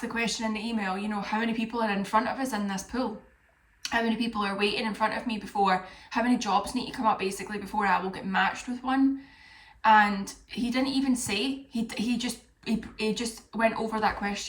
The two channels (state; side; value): identical; both; correlation 1.00